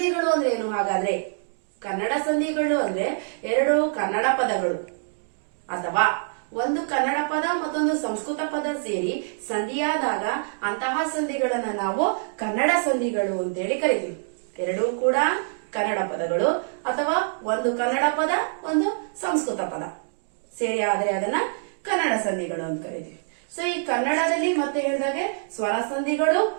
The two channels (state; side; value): silent; left; digital silence